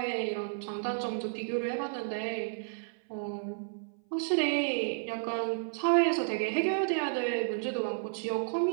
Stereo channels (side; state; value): left; silent; 56 dB below the other